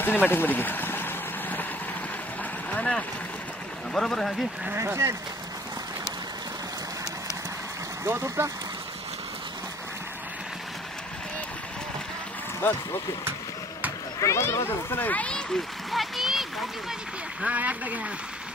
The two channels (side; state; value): both; normal; correlation 0.54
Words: सिनेमॅटिक मध्ये घे हा ना. बरोबर आहे घे गवत उपटा बस ओके चला बाजूला बाजूला चला हा एकदा घ्या